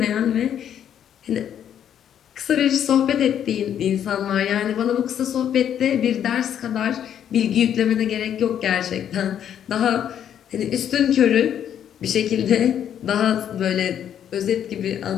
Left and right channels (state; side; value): quieter; right; 9.6 dB